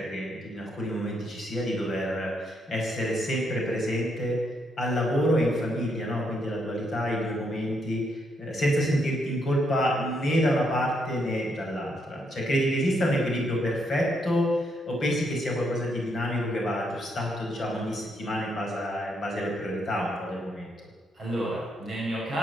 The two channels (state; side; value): normal; both; correlation 0.76